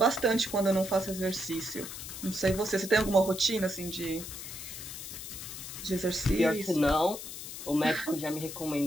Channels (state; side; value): noise; left; hiss, 9 dB below the sound